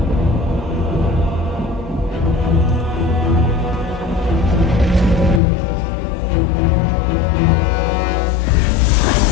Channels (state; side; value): drops out; right; at 5.4 s